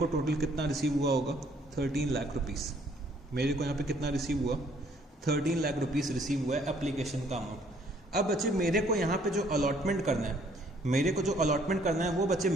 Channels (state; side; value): normal; both; correlation 0.62